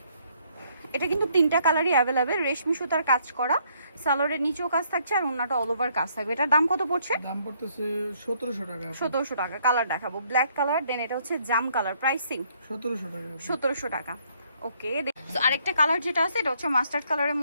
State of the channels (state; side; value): inverted; both; correlation -0.67